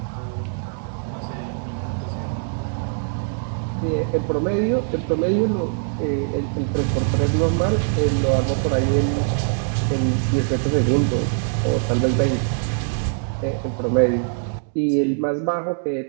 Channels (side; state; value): left; silent; digital silence